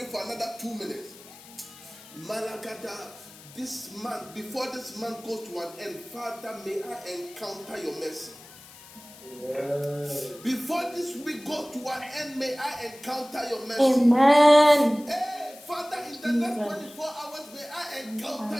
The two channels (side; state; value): left; noise; hiss, 20 dB below the sound